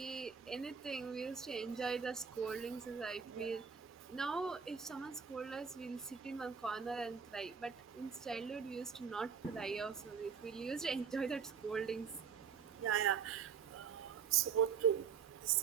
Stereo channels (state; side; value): quieter; left; 6.6 dB